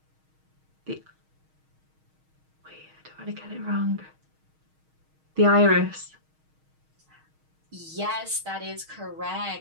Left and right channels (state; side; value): late; left; 6.4 ms